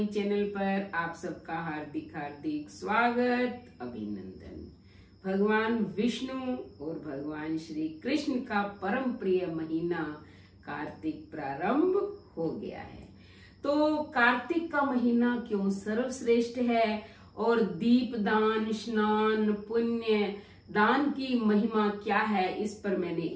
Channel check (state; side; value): identical; both; correlation 1.00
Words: चैनल पर आप सबका हार्दिक हार्दिक स्वागत, अभिनंदन। भगवान विष्णु और भगवान श्री कृष्ण का परम प्रिय महीना कार्तिक प्रारंभ हो गया है। तो कार्तिक का महीना क्यों सर्वश्रेष्ठ है और दीप दान, स्नान, पुण्य दान की महिमा क्या है, इस पर मैंने